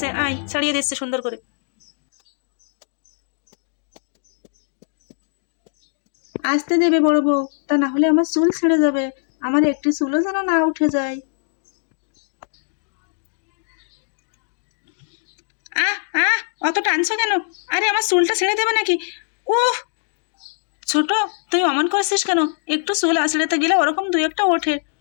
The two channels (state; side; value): silent; right; digital silence